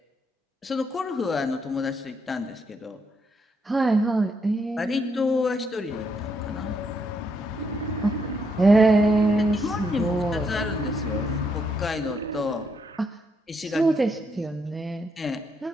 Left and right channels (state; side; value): normal; both; correlation 0.76